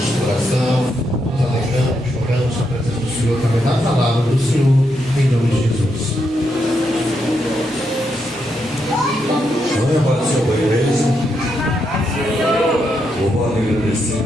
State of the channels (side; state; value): both; normal; correlation 0.81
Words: coração, nos alegramos, choramos a presença do Senhor, através da palavra do Senhor, em nome de Jesus. Amém, Pai do Senhor, boa igreja. Louvado e